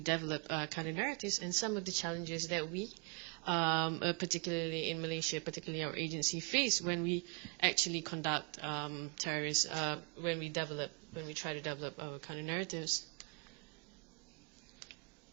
counter-narratives and some of the challenges that we, particularly in Malaysia, particularly our agency, face when we actually conduct terrorists, when we try to develop our counter-narratives.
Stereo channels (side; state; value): left; quieter; 33.1 dB